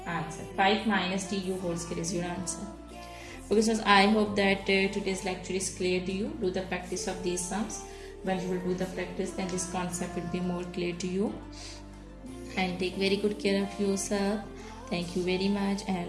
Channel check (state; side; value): identical; both; correlation 1.00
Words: answer. 5 minus tu whole square is your answer. Okay, so I hope that today's lecture is clear to you. Do the practice of these sums. When you will do the practice, then this concept will be more clear to you. And take very good care of yourself. Thank you very much, and